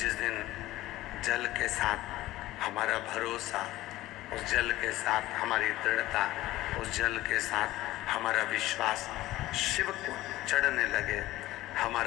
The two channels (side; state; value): right; quieter; 16.5 dB